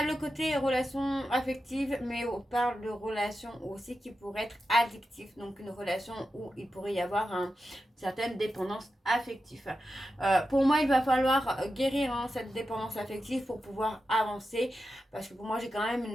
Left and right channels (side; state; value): both; normal; correlation 0.90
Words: le côté relation affective, mais on parle de relation aussi qui pourrait être addictive. Donc une relation où il pourrait y avoir une certaine dépendance affective. Pour moi, il va falloir guérir cette dépendance affective pour pouvoir avancer. Parce que pour moi, j'ai quand même